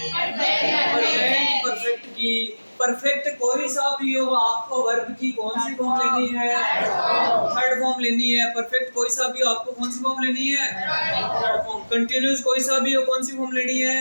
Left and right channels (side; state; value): both; inverted; correlation -1.00